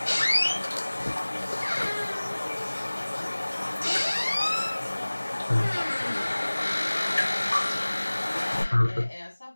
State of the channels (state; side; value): inverted; both; correlation -1.00